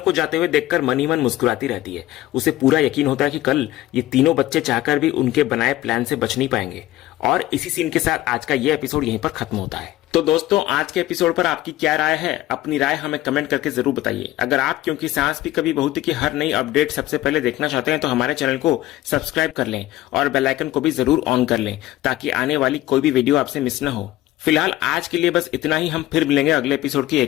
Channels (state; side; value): quieter; right; 15.7 dB